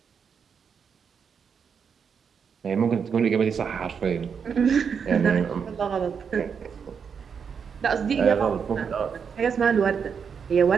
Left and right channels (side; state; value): left; quieter; 6.6 dB